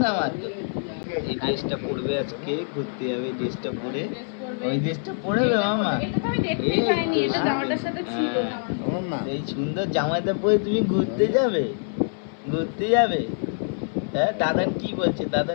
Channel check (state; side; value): silent; right; 62 dB below the other